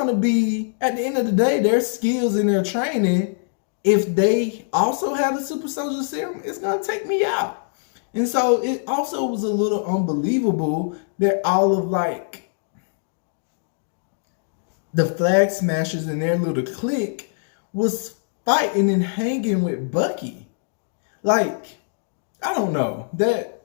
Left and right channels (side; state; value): right; silent; digital silence